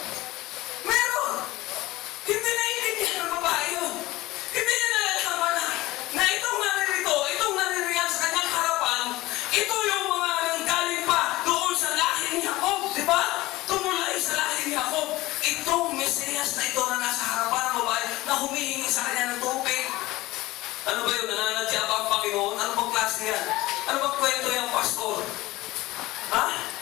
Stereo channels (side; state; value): right; quieter; 18.7 dB